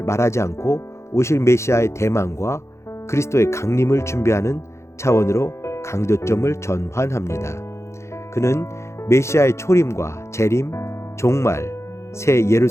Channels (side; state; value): right; late; 0.13 ms